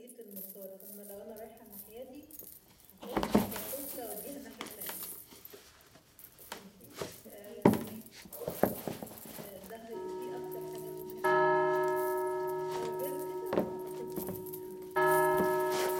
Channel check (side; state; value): both; identical; correlation 1.00